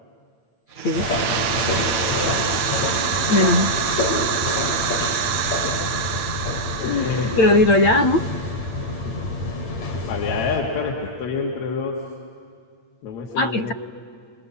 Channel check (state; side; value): late; right; 8.8 ms